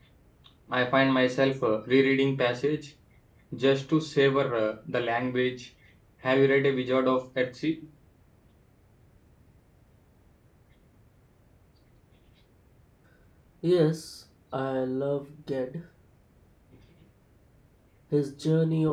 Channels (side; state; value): both; identical; correlation 1.00